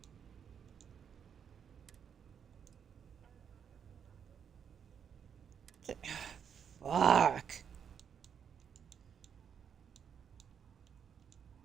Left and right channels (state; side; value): quieter; left; 7.6 dB